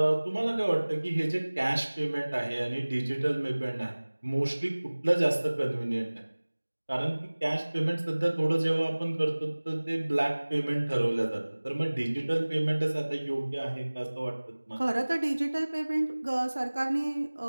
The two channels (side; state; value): both; inverted; correlation -1.00